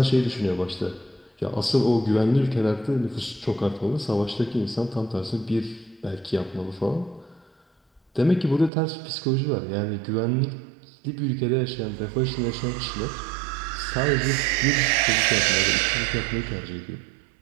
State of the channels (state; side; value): drops out; left; at 8.7 s